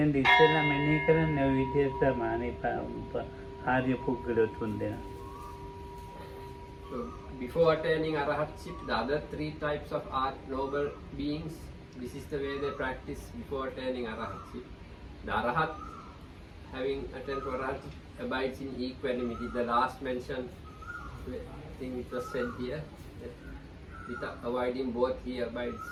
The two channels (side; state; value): both; identical; correlation 1.00